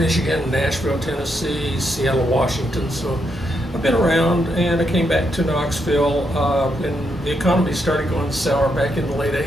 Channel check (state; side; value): normal; both; correlation 0.80